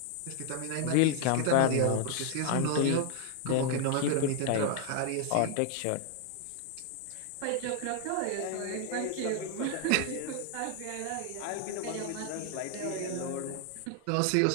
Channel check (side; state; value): both; different; correlation 0.00